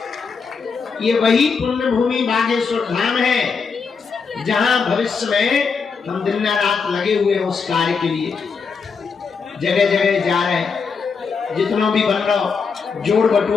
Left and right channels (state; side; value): quieter; right; 5.4 dB